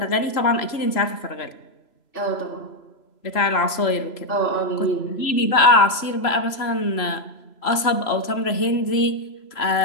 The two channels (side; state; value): right; late; 3.0 ms